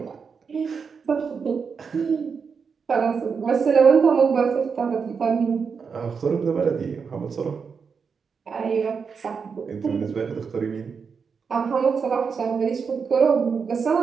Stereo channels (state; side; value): quieter; left; 5.8 dB